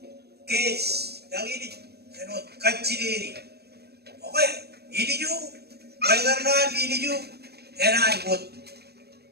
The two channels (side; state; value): left; late; 0.47 ms